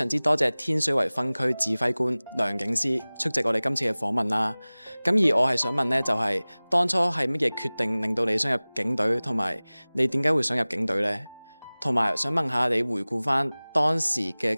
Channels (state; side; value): inverted; both; correlation -1.00